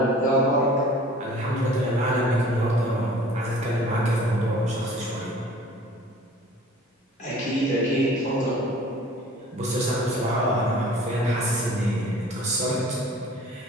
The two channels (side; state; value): both; normal; correlation 0.48